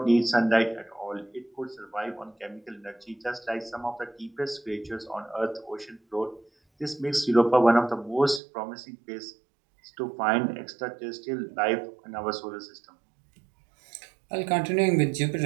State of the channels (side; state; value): left; drops out; at 8.4 s